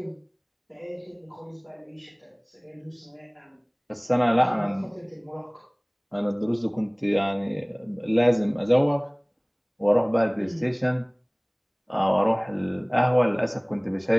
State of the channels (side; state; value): both; identical; correlation 1.00